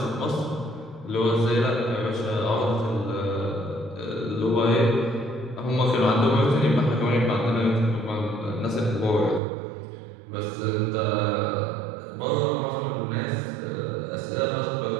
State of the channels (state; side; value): drops out; left; at 9.4 s